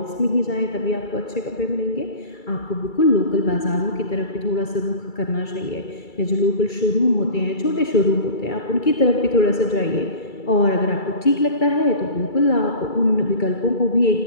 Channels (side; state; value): right; late; 2.3 ms